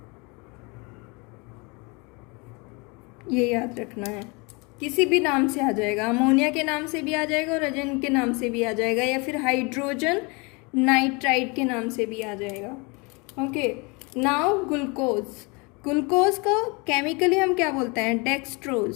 ये याद रखना है, किसी भी नाम से आ जाएगा, अमोनिया के नाम से भी आ जाएगा और एजेन के नाम से भी आ जाएगा, या फिर हाइड्रोजन नाइट्राइड के नाम से भी आ जाएगा। Okay, now glucose. ग्लूकोज को केमिकली हम क्या बोलते हैं? डेक्सट्रोज।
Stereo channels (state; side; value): quieter; right; 29.2 dB